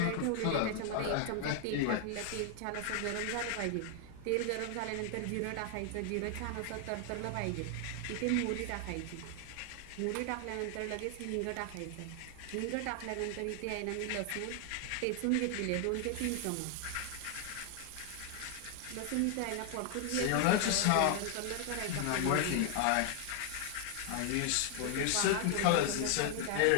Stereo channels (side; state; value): both; different; correlation 0.00